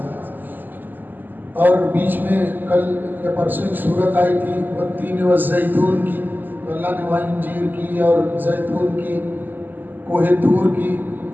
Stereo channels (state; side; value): late; left; 0.088 ms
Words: اور بیچ میں کل یا پرسوں ایک صورت آئی تھی والتین والزیتون کی، تو اللہ نے وہاں انجیر کی اور زیتون کی، کوہ طور کی،